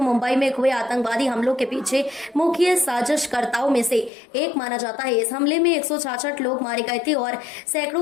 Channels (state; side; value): drops out; right; at 4.1 s